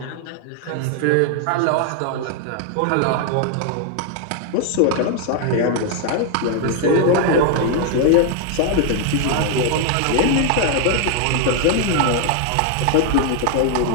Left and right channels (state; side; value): different; both; correlation 0.00